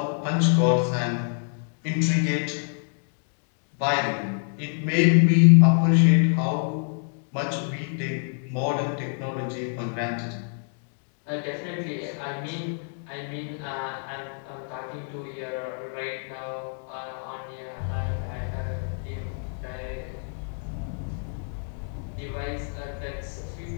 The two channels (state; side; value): silent; right; 58 dB below the other